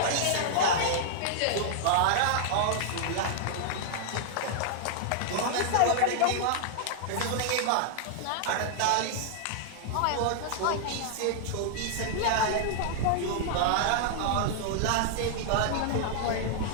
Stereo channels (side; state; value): both; different; correlation -0.01